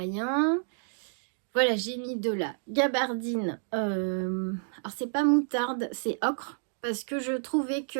Voilà, j'ai mis de la gabardine. Alors c'est pas moutarde, c'est ocre. Parce que je trouvais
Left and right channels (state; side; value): silent; left; digital silence